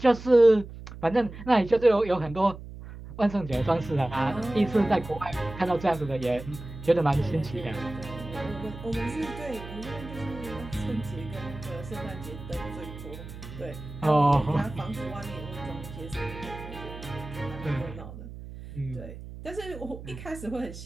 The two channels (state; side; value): noise; right; hum, 13 dB below the sound